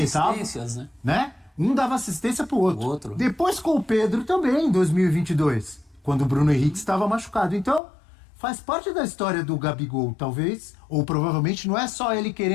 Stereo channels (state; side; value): drops out; right; at 7.8 s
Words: Né? Um dava assistência pro outro. Depois com o Pedro também, em 2022, quando o Bruno Henrique estava machucado. Então, faz parte da história do Gabigol, talvez, ou provavelmente não é só ele